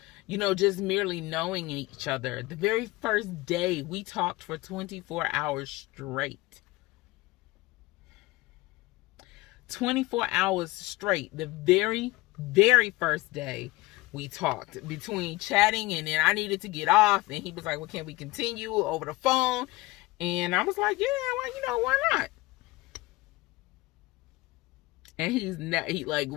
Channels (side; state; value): right; quieter; 20.6 dB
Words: just merely knowing each other. The very first day we talked for 24 hours straight. 24 hours straight. The very, very first day we talked, between chatting and then I needed to get off, and he was like, well, can we continue over the phone? And I was like, yeah, well, why not?